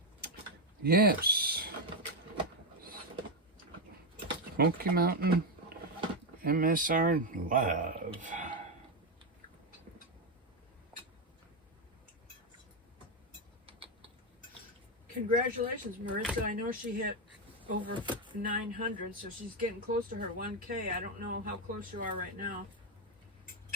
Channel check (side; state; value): both; normal; correlation 0.07